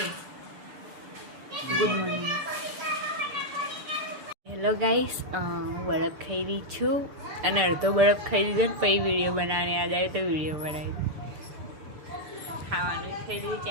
Good morning. હેલો ગાઈસ, હું બરફ ખાઈ રહી છું અને અડધો બરફ ખાઈ લીધો ને પછી વિડીયો બનાવવાની યાદ આવી તો વિડીયો બનાવી. ખાવાનું ખાઈ લીધું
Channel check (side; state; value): left; late; 6.8 ms